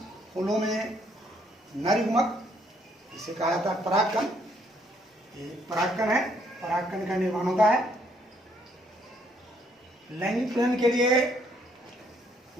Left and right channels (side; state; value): both; normal; correlation 0.69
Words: फूलों में नर युग्मक जिसे कहा जाता है परागकण, ये परागकण है, परागकण का निर्माण होता है। लैंगिक प्रजनन के लिए